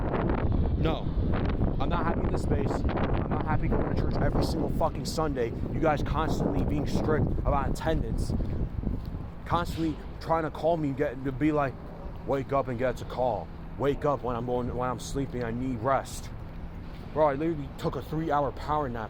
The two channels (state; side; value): identical; both; correlation 1.00